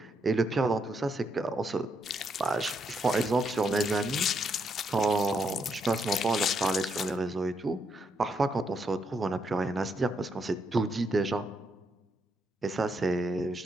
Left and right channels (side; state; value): both; normal; correlation 0.77